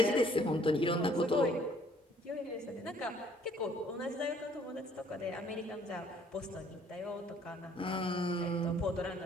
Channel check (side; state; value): both; normal; correlation 0.60